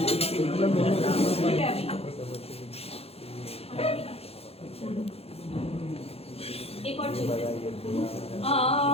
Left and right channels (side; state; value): right; late; 0.29 ms